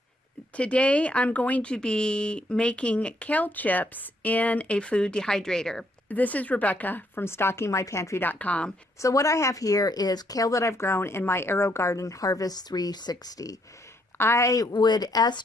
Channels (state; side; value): normal; both; correlation 0.71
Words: Today I'm going to be making kale chips in a food dehydrator. This is Rebecca from StockingMyPantry.com. So what I have here is kale that I've grown in my AeroGarden Harvest 360. I would